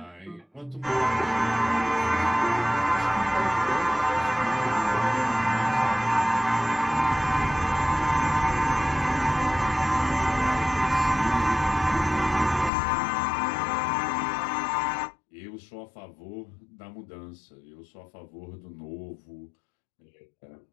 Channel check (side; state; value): right; drops out; at 12.7 s